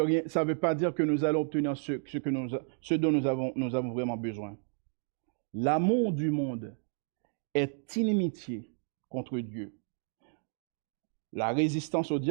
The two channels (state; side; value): silent; left; 57 dB below the other